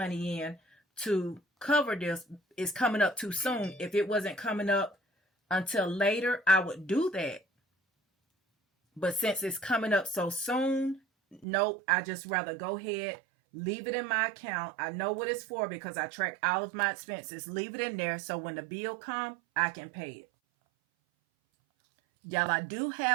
in to cover this. It's coming up too soon. If it wasn't coming up until later, I would do that. But since it's coming up so soon, nope, I just rather go ahead, leave it in my account. I know what it's for because I track all of my expenses. Leave it in there so when the bill comes, I can pay it. Y'all, I do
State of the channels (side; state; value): left; drops out; at 11.5 s